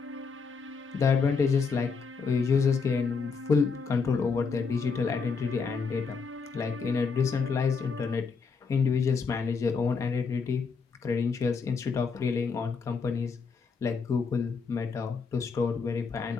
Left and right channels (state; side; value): quieter; right; 5.1 dB